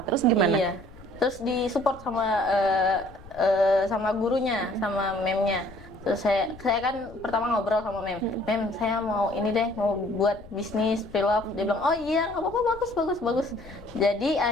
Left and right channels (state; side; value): noise; left; rumble, 19 dB below the sound